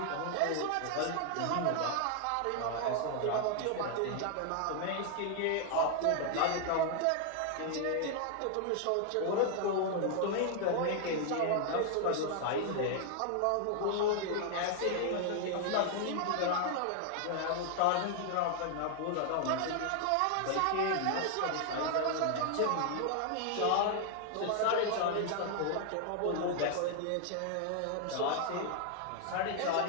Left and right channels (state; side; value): different; both; correlation 0.00